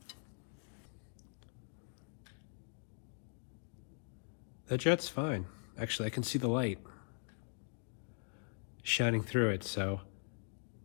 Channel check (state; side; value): silent; right; 50 dB below the other